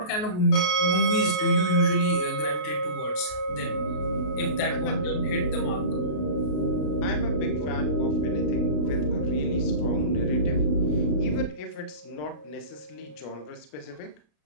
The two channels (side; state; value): right; late; 33 ms